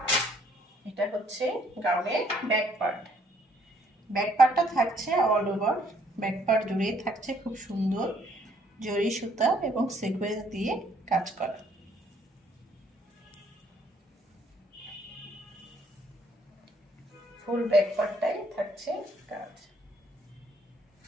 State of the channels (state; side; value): normal; both; correlation 0.65